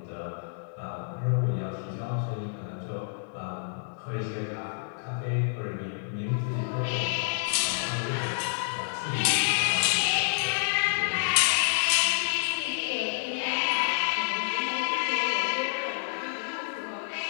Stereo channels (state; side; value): silent; right; 58 dB below the other